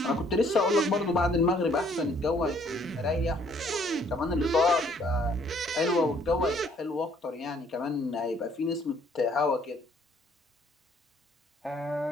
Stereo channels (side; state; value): both; normal; correlation 0.63